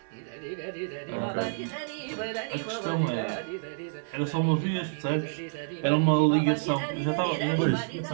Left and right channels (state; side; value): silent; left; 59 dB below the other